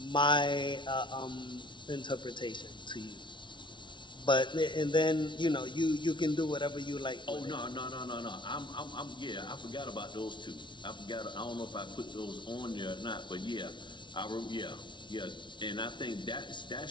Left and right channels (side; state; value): right; late; 0.24 ms